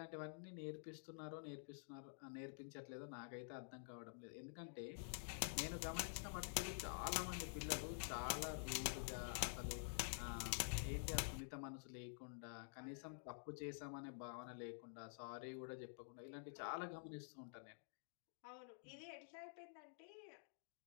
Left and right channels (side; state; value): right; silent; digital silence